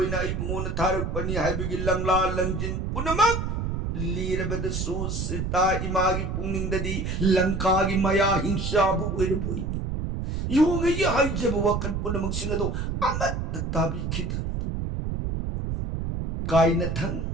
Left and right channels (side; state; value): right; noise; rumble, 2 dB below the sound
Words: इबुन थारक पनी हाइबिगी लंगला लंजिन पुनमक लीरबदसु सीता इमागी पुंगनिंगददी लंकागी मया हिंसाबु ओइरबोइनी योंगई हाइजब वकन पुनमक सिंगदो अमत ताबी खिद काइना थंग